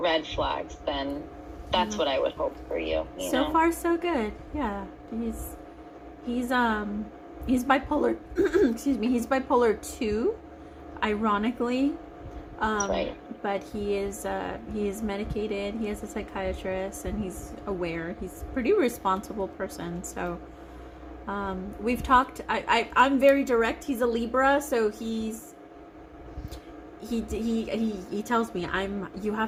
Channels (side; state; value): both; identical; correlation 1.00